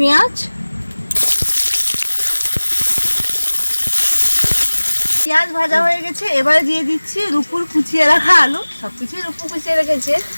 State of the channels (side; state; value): both; inverted; correlation -1.00